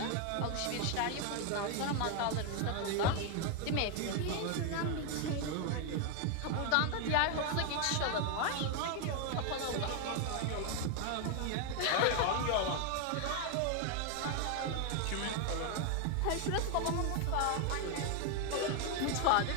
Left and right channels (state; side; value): different; both; correlation 0.01